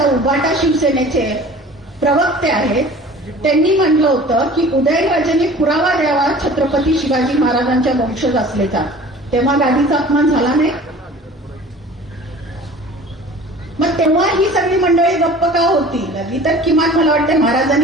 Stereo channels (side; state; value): both; normal; correlation 0.44